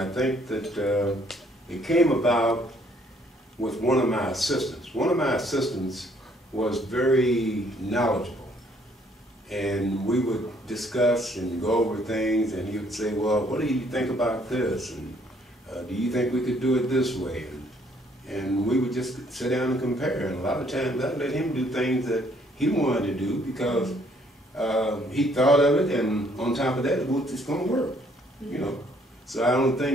think that it came about with one of my assistants. One of my assistants was very knowledgeable, and we would discuss and go over things, and he would say, well, what do you think about this, and do you think we could do it this way? And we would just sit down and compare, and a lot of times I'd let him do things that he wanted to do because he thought of it, and on top of that, it's going to work, you know. So I don't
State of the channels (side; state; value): both; normal; correlation 0.65